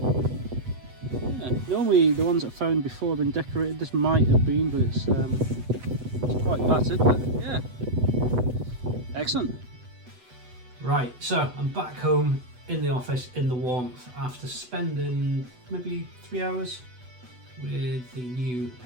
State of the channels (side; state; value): left; late; 8.1 ms